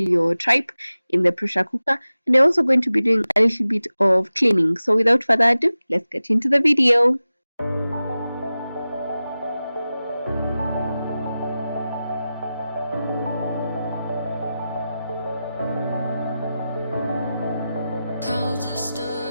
your tripe in the pressure cooker, and I'm also going to be doing a little bit of cleaning. So without further ado, let's get into the video. Clouds are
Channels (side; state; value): both; inverted; correlation -0.95